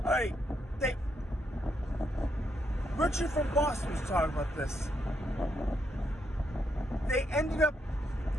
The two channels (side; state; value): both; normal; correlation 0.78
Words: Richard from Boston was talking about this. They ended up,